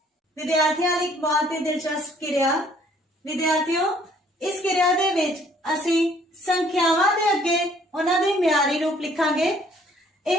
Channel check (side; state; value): both; normal; correlation 0.60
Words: विद्यार्थियों लई एक बहुत ही दिलचस्प क्रिया। विद्यार्थियों इस क्रिया दे विच असी संख्यावां दे अगे उन्हां दे म्यारी रूप लिखांगे।